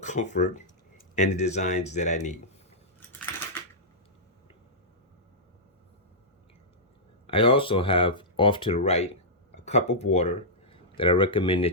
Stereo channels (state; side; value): normal; both; correlation -0.12